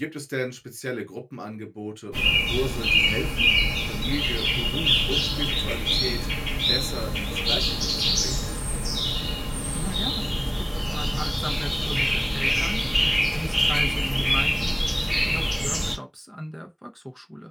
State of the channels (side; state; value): both; identical; correlation 1.00